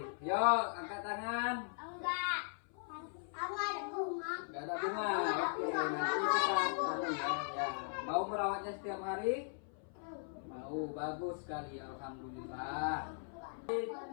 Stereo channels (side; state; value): right; silent; 52 dB below the other